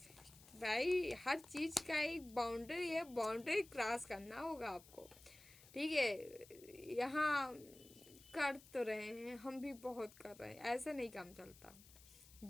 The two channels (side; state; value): left; noise; hiss, 21 dB below the sound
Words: भाई। हर चीज़ का एक बाउंड्री है, बाउंड्री क्रॉस करना होगा आपको, ठीक है। यहाँ कर तो रहे हैं, हम भी बहुत कर रहे हैं, ऐसा नहीं काम चलता।